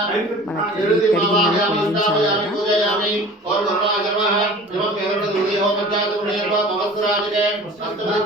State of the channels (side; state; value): both; normal; correlation 0.42